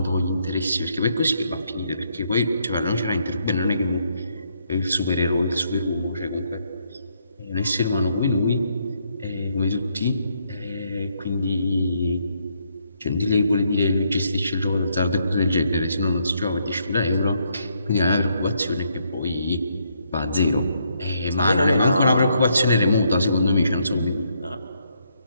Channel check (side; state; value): both; inverted; correlation -0.74